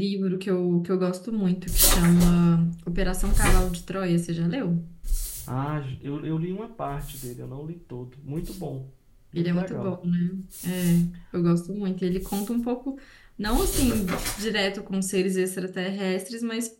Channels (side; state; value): both; identical; correlation 1.00